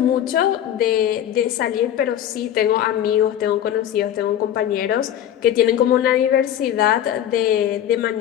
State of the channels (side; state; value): right; quieter; 10.8 dB